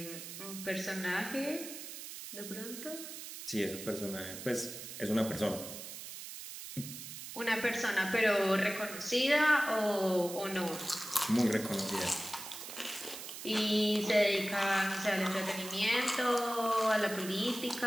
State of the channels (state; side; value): noise; right; hiss, 10 dB below the sound